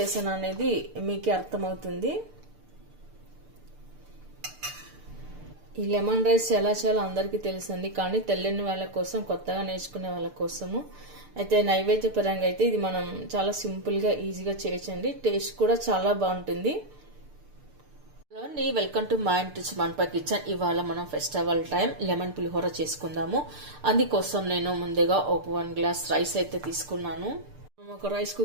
అనేది మీకే అర్థమవుతుంది. ఈ లెమన్ రైస్ ఎలా చేయాలో అందరికీ తెలుసండి, కానీ తెలియని వాళ్ళ కోసం, కొత్తగా నేర్చుకునే వాళ్ళ కోసము అయితే నైవేద్య పరంగా అయితే ఇది మనం చాలా సింపుల్గా ఈజీగా చేయొచ్చండి. టేస్ట్ కూడా చాలా బాగుంటుంది. వెల్కమ్ టు మై ఇంటి మన్పా కిచెన్. ఇవాళ మనం ఫెస్టివల్ టైం లెమన్ పులిహోర చేసుకుందాము. అందుకోసం నేను ముందుగా ఒక 1 గ్లాస్ రైస్ అయితే తీసుకున్నాను. ఒక రైస్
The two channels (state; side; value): late; left; 6.7 ms